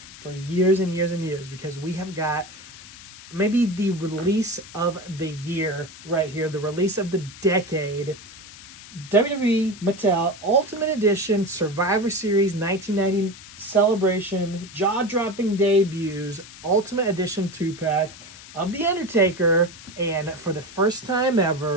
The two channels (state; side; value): noise; left; hiss, 17 dB below the sound